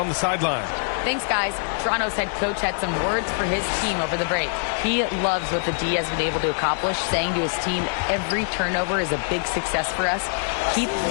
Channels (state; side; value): silent; right; digital silence